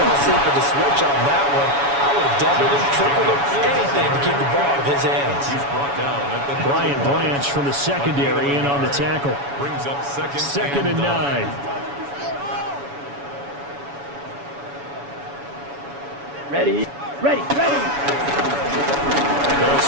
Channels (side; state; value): left; late; 7.1 ms